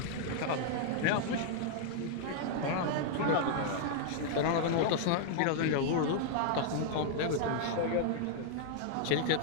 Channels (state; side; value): different; both; correlation 0.00